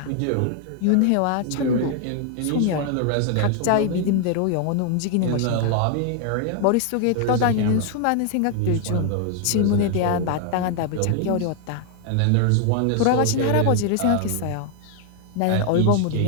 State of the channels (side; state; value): both; different; correlation 0.00